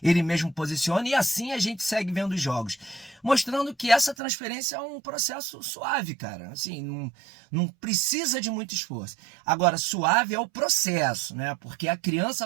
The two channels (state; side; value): drops out; left; at 4.2 s